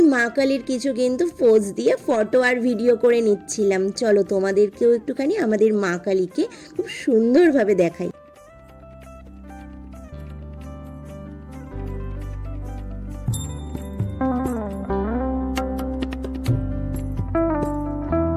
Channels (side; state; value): both; identical; correlation 1.00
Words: মা কালীর কিছু কিন্তু পোজ দিয়ে ফটো আর ভিডিও করে নিচ্ছিলাম। চলো তোমাদেরকেও একটুখানি আমাদের মা কালীকে খুব সুন্দরভাবে দেখাই।